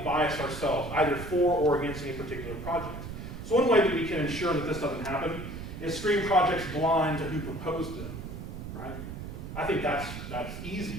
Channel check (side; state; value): right; noise; rumble, 9 dB below the sound